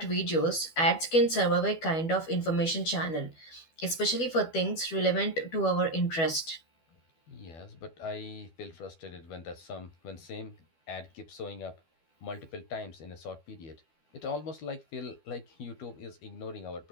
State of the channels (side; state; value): right; late; 12 ms